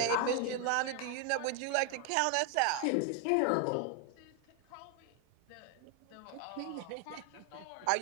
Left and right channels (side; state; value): both; different; correlation 0.01